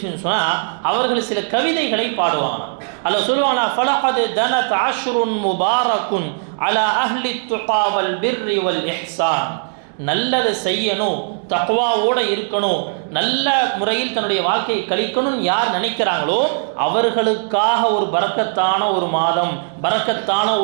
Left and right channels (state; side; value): silent; left; digital silence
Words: சொன்னால் அவர்கள் சில கவிதைகளை பாடுவாங்க. அல்ல சொல்லுவாங்களா, ஃபலகத் தனத் அஷ்ருன் முபாரக்குன் அலா அஹ்லி துகா வல் பிர்ரி வல் இஹ்சான். நல்லதை செய்யணும், தக்வாவோட இருக்கணும், நல்ல முறையில் தன்னுடைய வாழ்க்கையை கழிக்கணும் யார் நினைக்கிறாங்களோ அவர்களுக்காக ஒரு பரக்கத்தான ஒரு மாதம், பரக்கத்தான